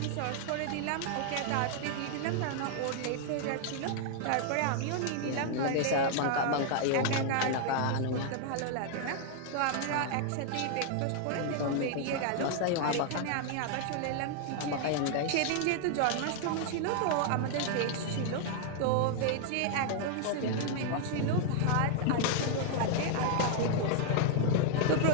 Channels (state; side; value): different; both; correlation 0.00